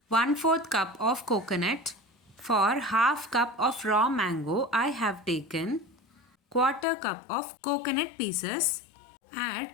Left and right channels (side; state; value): right; drops out; at 6.9 s